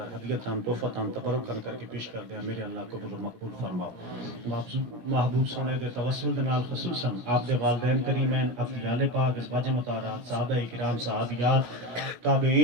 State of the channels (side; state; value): left; late; 17 ms